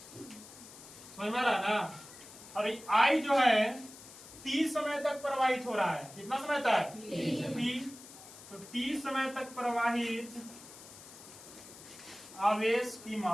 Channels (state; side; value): noise; left; hiss, 17 dB below the sound